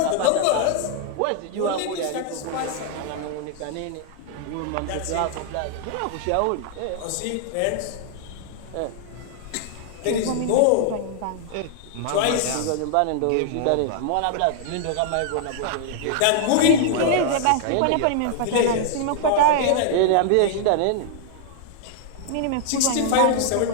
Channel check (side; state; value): both; different; correlation 0.00